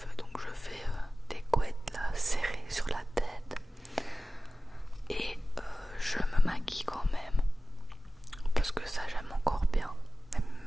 donc je fais des couettes là serrées sur la tête et je me maquille quand même parce que ça j'aime encore bien.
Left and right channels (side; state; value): both; normal; correlation 0.96